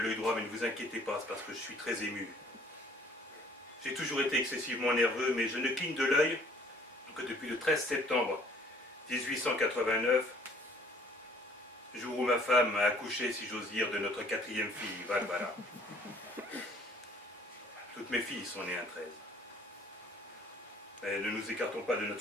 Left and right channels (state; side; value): normal; both; correlation 0.57